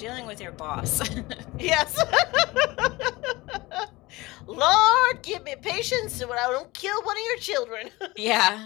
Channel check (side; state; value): right; quieter; 21.4 dB